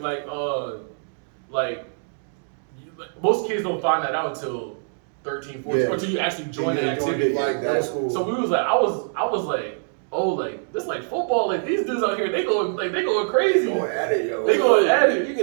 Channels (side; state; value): left; silent; digital silence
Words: Like most kids don't find that out until 13, 14, Yeah. or until you actually join the activity. Like that was cool. So we was like, I was like, oh, like this like football. Like these dudes out here, they going crazy. Going at it, yo. They going at it. You